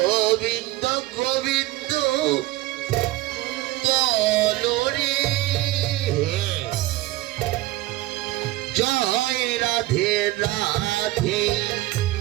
গোবিন্দ বলো রে। জয় রাধে রাধে,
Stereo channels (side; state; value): left; quieter; 17.5 dB